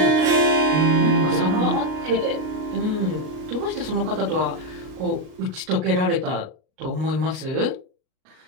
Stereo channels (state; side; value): late; left; 38 ms